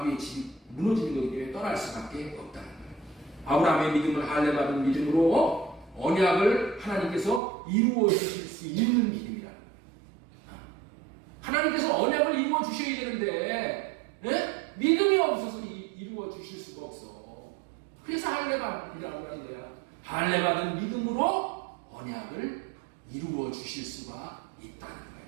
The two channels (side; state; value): left; drops out; at 7.4 s